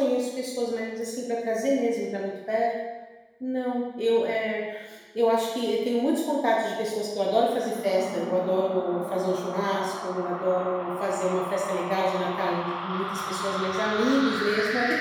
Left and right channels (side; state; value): both; identical; correlation 1.00